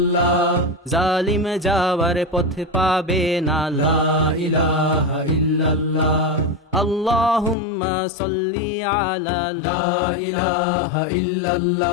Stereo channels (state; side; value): drops out; right; at 7.6 s